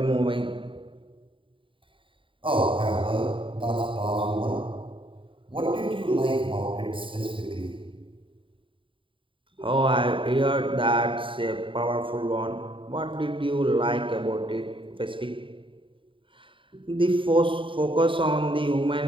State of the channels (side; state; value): left; late; 0.25 ms